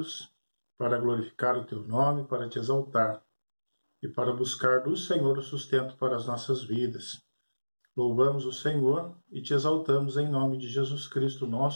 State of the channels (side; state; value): both; inverted; correlation -1.00